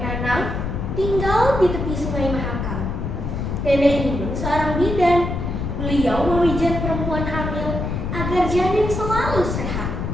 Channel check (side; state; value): left; noise; rumble, 3 dB below the sound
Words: Nanang tinggal di tepi Sungai Mahakam. Nenek Inun seorang bidan. Beliau memijat perempuan hamil agar janin selalu sehat.